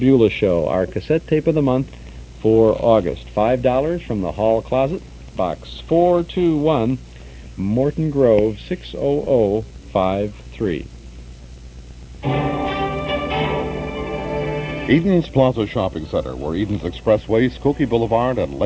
Show, our cassette tape of the month for August. $5 from the Hall Closet, Box 421, Morton Grove, 60053. Eden's Plaza Shopping Center, where Eden's Expressway, Skokie Boulevard, and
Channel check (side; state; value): both; identical; correlation 1.00